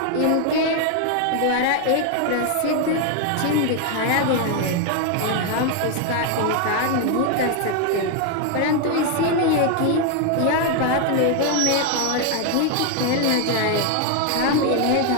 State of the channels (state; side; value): different; both; correlation 0.01